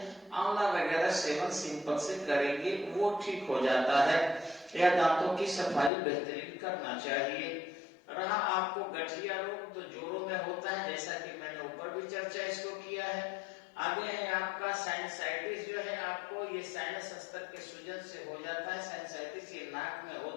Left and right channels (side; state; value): right; drops out; at 5.9 s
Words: आंवला वगैरह सेवन सिंपल से करेंगे वो ठीक हो जाता है। या दांतों की सफाई बेहतरीन करना चाहिए। रहा आपको गठिया रोग, तो जोड़ों में होता है, जैसा कि मैंने ऊपर भी चर्चा इसको किया है। आगे है आपका साइनसाइटिस जो है, आपको ये साइनस हस्तक के सूजन से हो जाता है। साइनसाइटिस ये नाक में